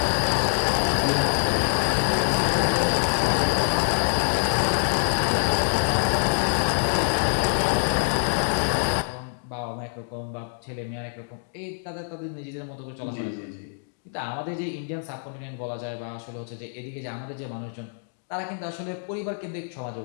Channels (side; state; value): right; silent; digital silence